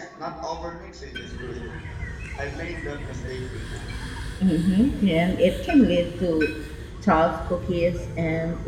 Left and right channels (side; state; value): both; identical; correlation 1.00